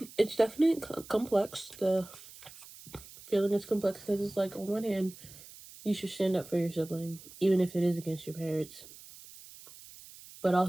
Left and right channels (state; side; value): noise; right; hiss, 18 dB below the sound